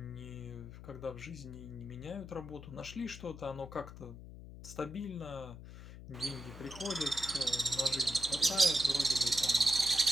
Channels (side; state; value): left; noise; hum, 14 dB below the sound